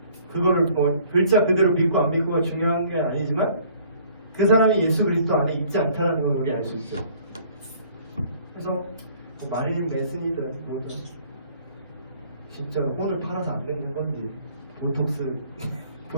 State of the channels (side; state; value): both; inverted; correlation -0.57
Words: 그거를 뭐 글자 그대로 믿고 안 믿고가 중요한 게 아니지만 그 사람이 예수 그리스도 안에 있지 않다는 걸 우리 알 수 있죠. 그래서 뭐 마릴린 맨슨이든 뭐든 진짜 혼을 팔아서 안 늙는 건지